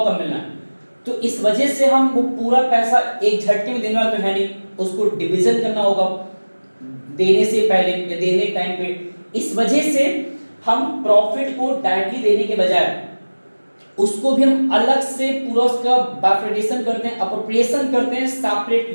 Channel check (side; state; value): both; inverted; correlation -1.00